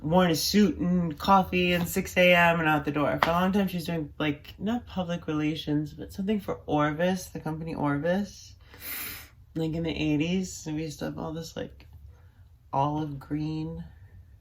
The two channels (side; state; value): both; identical; correlation 1.00